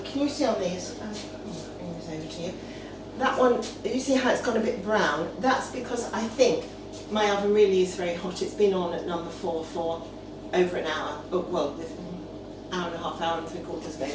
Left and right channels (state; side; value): identical; both; correlation 1.00